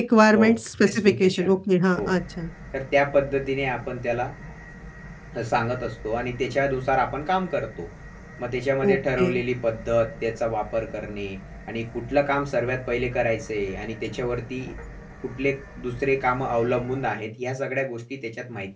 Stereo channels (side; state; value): both; identical; correlation 1.00